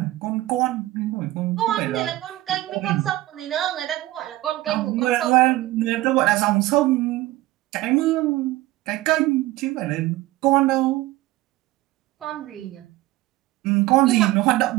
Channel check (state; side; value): quieter; left; 17.3 dB